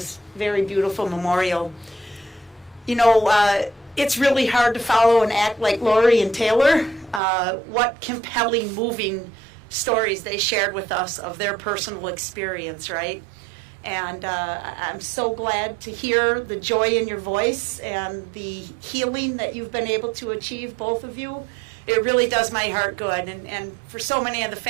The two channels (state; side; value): drops out; left; at 7.2 s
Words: very beautiful memorial. You know, it's really hard to follow and act like Lori and Taylor. What compelling, moving stories they shared with us of their personal experience, right? And I'm so glad to hear the joy in your voice and the healing that you've been able to achieve, both of you. It really does my heart good. And for so many of the